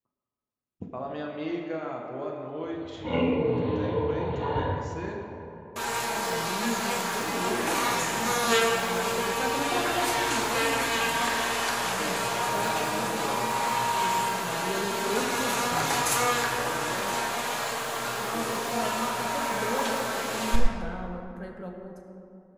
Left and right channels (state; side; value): identical; both; correlation 1.00